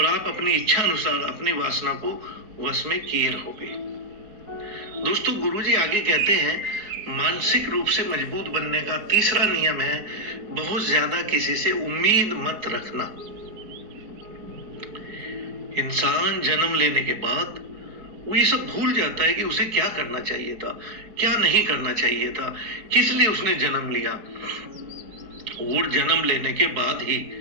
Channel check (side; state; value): left; late; 4.5 ms